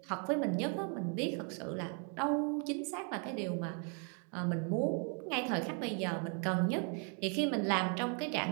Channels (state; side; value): quieter; left; 39.0 dB